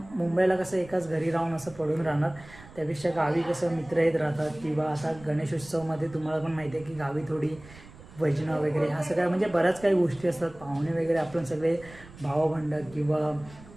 मुंबईला कसं एकाच घरी राहून असं पडून राहणार, त्यापेक्षा गावी कसं मित्र येत राहतात. किंवा आता गणेशोत्सवमध्ये तुम्हाला पण माहिती आहे की गावी थोडी भजनं वगैरे ह्या सगळ्या म्हणजे बऱ्याच काही गोष्टी असतात. पाहुणे वगैरे आपण सगळे भावबंड किंवा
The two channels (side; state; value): right; noise; rumble, 20 dB below the sound